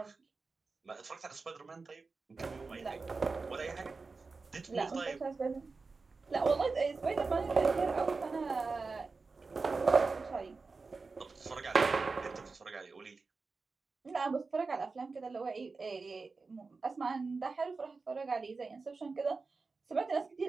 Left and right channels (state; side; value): quieter; left; 4.2 dB